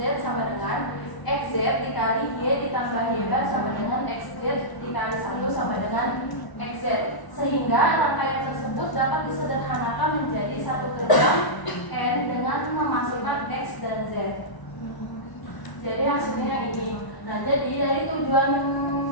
sama dengan x, z dikali y ditambah y bar sama dengan x, z dikali 1 sama dengan x, z. Sehingga rangkaian tersebut dapat disederhanakan menjadi satu gerbang n dengan memasukkan x dan z. Jadi hasilnya ini. Nah, jadi dari tujuan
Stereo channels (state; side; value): late; right; 1.0 ms